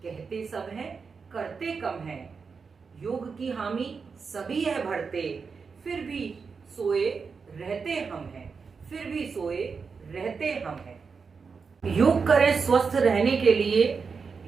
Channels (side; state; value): left; quieter; 5.3 dB